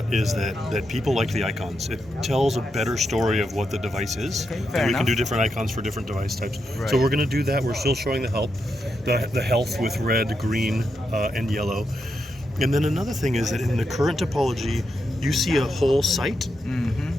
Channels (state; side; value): normal; both; correlation 0.84